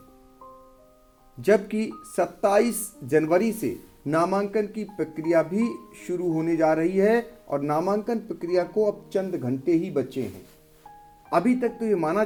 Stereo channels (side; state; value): both; identical; correlation 1.00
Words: जबकि 27 जनवरी से नामांकन की प्रक्रिया भी शुरू होने जा रही है और नामांकन प्रक्रिया को अब चंद घंटे ही बचे हैं। अभी तक तो ये माना